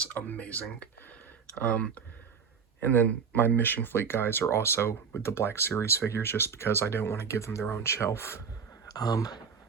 amazing. And then my Mission Fleet guys are also with the Black Series figures, just because I don't want to give them their own shelf.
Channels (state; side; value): quieter; left; 6.3 dB